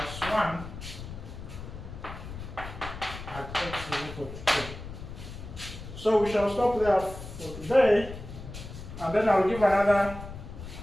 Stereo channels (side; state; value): left; noise; rumble, 11 dB below the sound